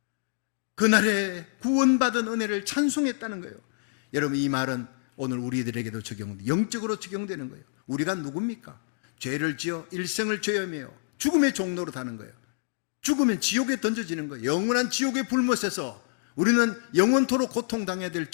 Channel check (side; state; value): right; silent; digital silence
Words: 그날에 구원받은 은혜를 찬송했다는 거예요. 여러분, 이 말은 오늘 우리들에게도 영적으로 적용되는 거예요. 우리가 누굽니까? 죄를 지어 일생을 죄하며 죽음의 종로로 가는 거예요. 죽으면 지옥에 던져지는 거예요. 영원한 지옥의 불못에서 우리는 영원토록 고통당해야 될